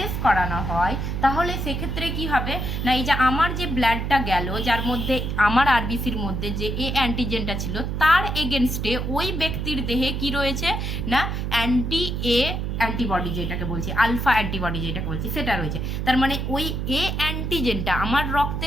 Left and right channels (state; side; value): noise; right; hum, 2 dB below the sound